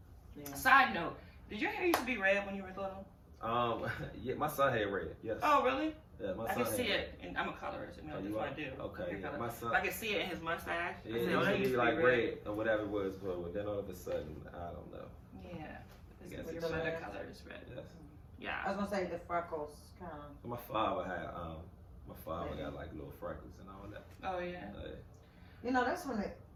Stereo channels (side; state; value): both; identical; correlation 1.00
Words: Yeah. Side note, did your hair used to be red when you were little? Yeah, my son had red. Yes. Oh, really? Yeah, my I son can see it, and I'm a colorist. You know, that's what I do. Okay, yeah, my son. I can see it in his mustache. Yeah, it used to be like red or whatever it was, but then all of a sudden, I don't know. Yeah, your other color is red. Yes. Yeah. I was gonna say the freckles kind of. My father got like little freckles and all that. Oh yeah. You know, that's when